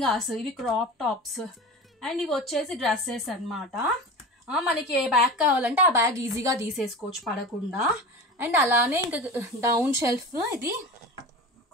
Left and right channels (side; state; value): both; normal; correlation 0.32